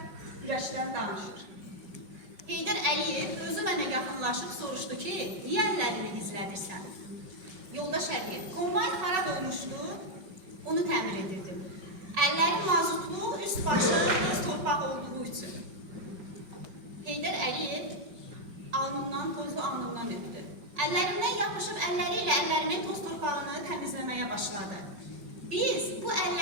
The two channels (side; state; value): left; late; 5.3 ms